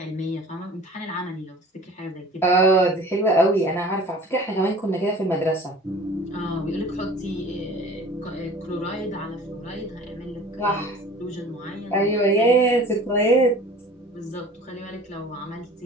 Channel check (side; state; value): both; normal; correlation 0.45